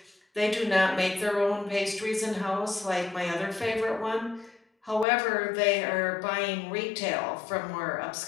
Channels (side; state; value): right; drops out; at 5.1 s